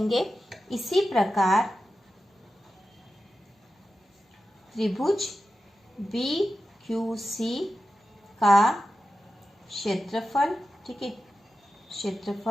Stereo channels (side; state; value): both; normal; correlation 0.91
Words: इसी प्रकार त्रिभुज BQC का क्षेत्रफल, ठीक है,